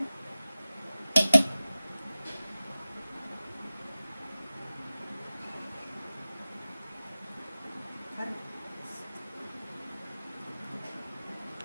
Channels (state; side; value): inverted; both; correlation -0.97